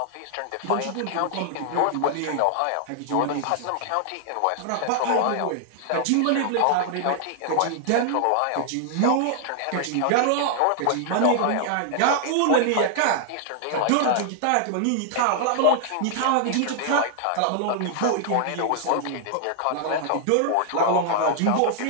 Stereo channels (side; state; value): both; different; correlation 0.00